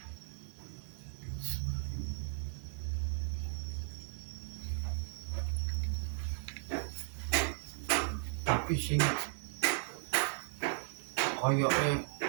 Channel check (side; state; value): left; silent; 54 dB below the other